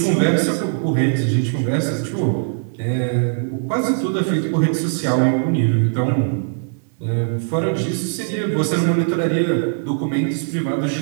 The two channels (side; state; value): left; silent; 62 dB below the other